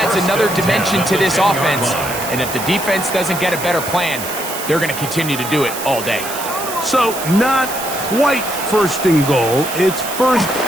another dimension to this offense. And if the defense doesn't get a better plan, they're going to continue to do it all day. So, not quite first and goal. It's first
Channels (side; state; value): right; noise; hiss, 8 dB below the sound